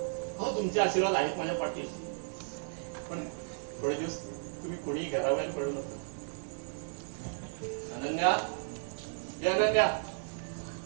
हो, तुमचे आशीर्वाद आहेत माझ्या पाठीशी, पण थोडे दिवस तुम्ही कोणीही घराबाहेर पडू नका. अनन्या, ये अनन्या,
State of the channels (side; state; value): left; silent; digital silence